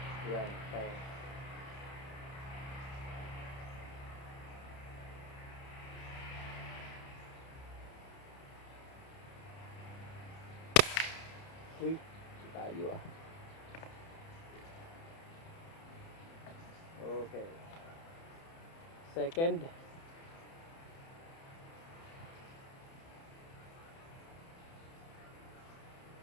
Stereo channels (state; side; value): late; right; 30 ms